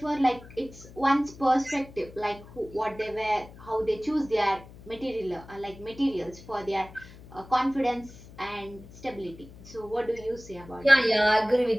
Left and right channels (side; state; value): left; noise; hum, 19 dB below the sound